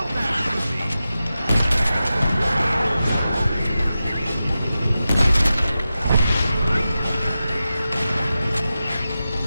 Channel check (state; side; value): inverted; both; correlation -0.93